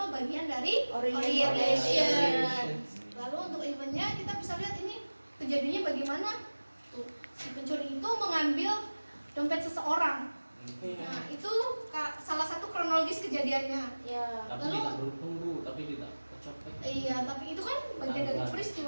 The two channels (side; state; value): both; inverted; correlation -1.00